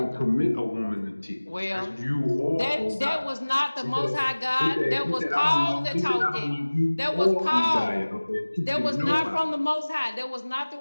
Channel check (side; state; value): both; inverted; correlation -1.00